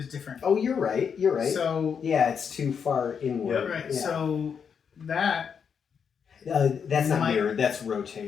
different. Oh, you're right. You're right. So yeah, it's too far inward. right. Yeah. So that That's not Might- mirrored. That's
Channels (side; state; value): right; quieter; 6.9 dB